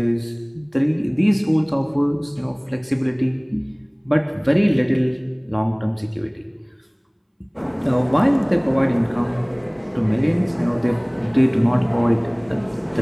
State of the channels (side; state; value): both; identical; correlation 1.00